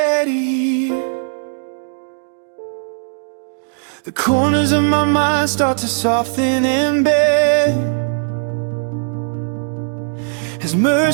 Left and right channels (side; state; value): left; silent; digital silence